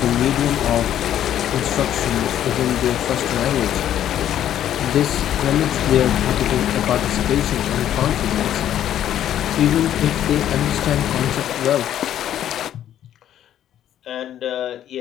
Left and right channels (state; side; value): quieter; right; 11.1 dB